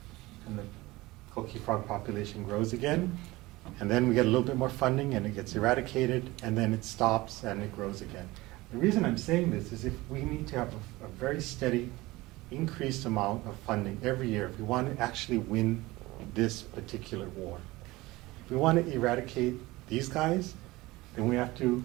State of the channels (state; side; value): quieter; left; 20.2 dB